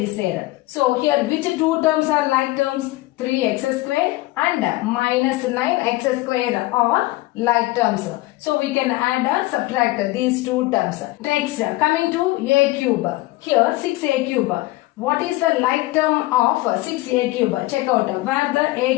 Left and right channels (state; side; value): quieter; right; 19.4 dB